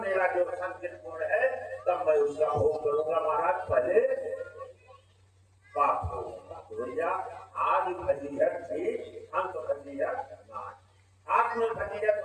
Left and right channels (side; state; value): both; identical; correlation 1.00